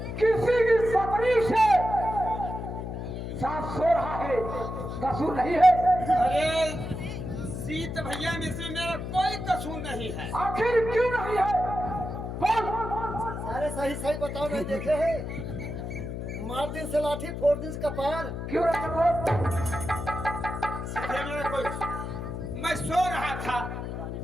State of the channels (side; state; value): left; noise; hum, 6 dB below the sound